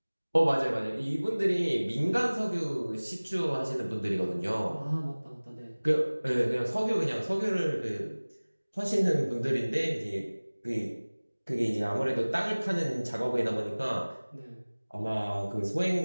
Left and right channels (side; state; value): both; inverted; correlation -1.00